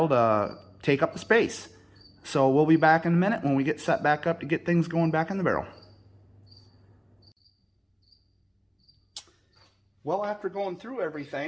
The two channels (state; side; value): identical; both; correlation 1.00